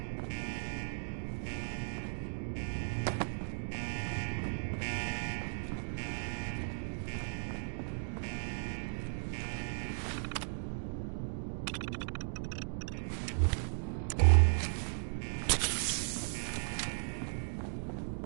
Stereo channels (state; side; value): silent; left; digital silence